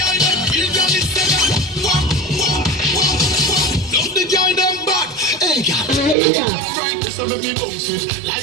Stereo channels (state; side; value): drops out; left; at 6.2 s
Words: so let me bounce it